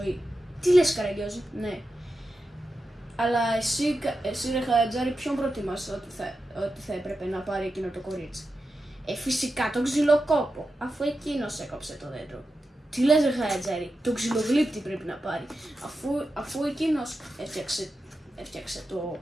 Τι λες, Καραγκιόζη? Ναι. Αλλά εσύ ρε Χατζάρη, ποιον προτιμάς ότι θα έπρεπε να πάρει εκείνο το κορίτσι? Φυσικά τον ξυλοκόπο, αφού εκείνος έκοψε το δέντρο. Τι λες, ρε Χατζάρη? Τον ξυλογλύπτη πρέπει να πάρει, αφού εκείνος έφτιαξε το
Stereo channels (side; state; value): both; normal; correlation 0.90